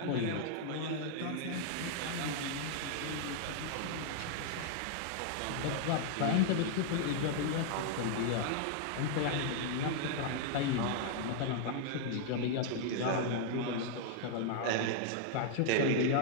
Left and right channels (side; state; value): both; different; correlation -0.01